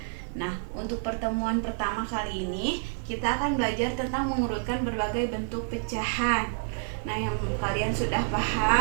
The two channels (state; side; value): silent; left; 59 dB below the other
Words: Nah, untuk pertemuan pertama kali ini kita akan belajar tentang mengurutkan berbagai bentuk pecahan. Nah, yang kalian sudah